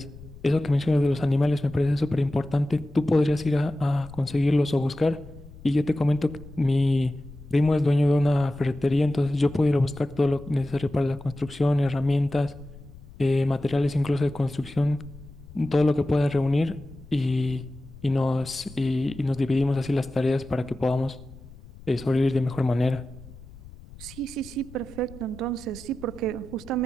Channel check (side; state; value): left; noise; rumble, 19 dB below the sound